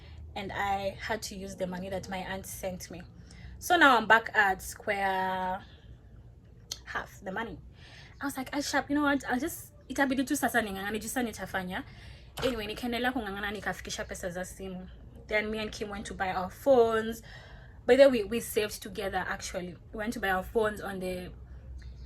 and I had to use the money that my aunt sent me. So now I'm back at square half the money. I was like, sharp, you know what, I'll just, itabidi tu sasa ningangana jusa nitafanya. Anyway, nikaendelea kungangana, nikafikisha pesa za simu. Then me and Kim went to buy our phones. By the way, we saved together actually. We went to buy our phones on the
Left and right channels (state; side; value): identical; both; correlation 1.00